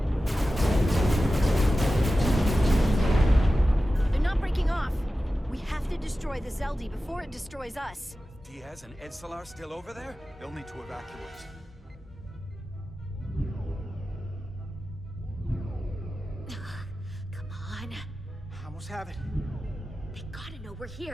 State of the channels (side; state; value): both; normal; correlation 0.94